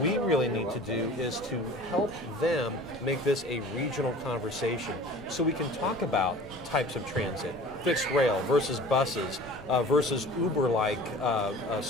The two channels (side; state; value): both; normal; correlation 0.44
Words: really need to do is to help them make this a regional conversation so we can talk about types of transit, fixed rail versus buses versus Uber-like